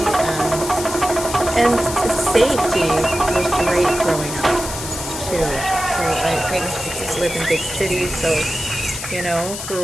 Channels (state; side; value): noise; left; hiss, 8 dB below the sound